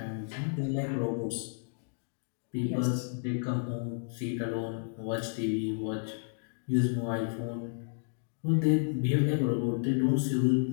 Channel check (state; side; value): silent; right; digital silence